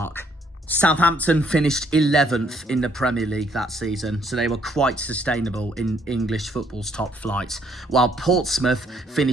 Southampton finished 11th in the Premier League that season, so they were quite sustainable in English football's top flight, while Portsmouth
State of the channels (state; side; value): normal; both; correlation 0.67